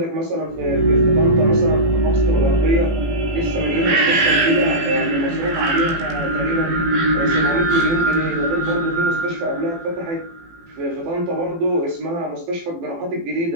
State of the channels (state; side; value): late; left; 18 ms